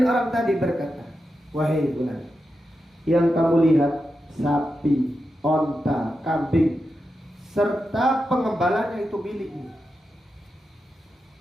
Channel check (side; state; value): both; normal; correlation 0.89